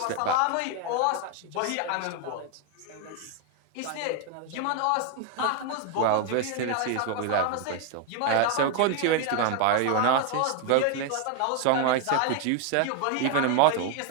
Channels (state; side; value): different; both; correlation 0.01